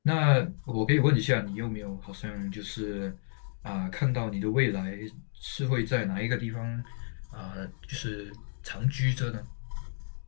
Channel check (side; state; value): right; silent; digital silence